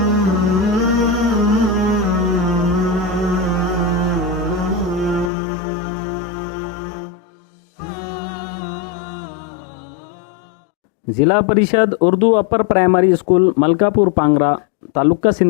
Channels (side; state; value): right; drops out; at 5.3 s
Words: Parishad Urdu upper primary school Malkapur Pangra taluka